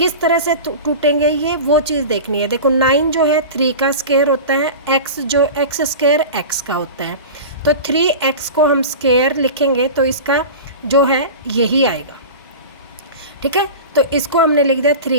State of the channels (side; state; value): both; inverted; correlation -0.31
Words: तरह से टूटेंगे ये वो चीज़ देखनी है। देखो 9 जो है 3 का स्क्वायर होता है, x जो x स्क्वायर x का होता है, तो 3x को हम स्क्वायर लिखेंगे तो इसका जो है यही आएगा, ठीक है। तो इसको हमने लिख दिया